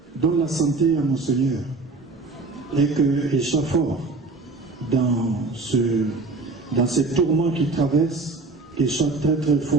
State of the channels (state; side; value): quieter; left; 3.6 dB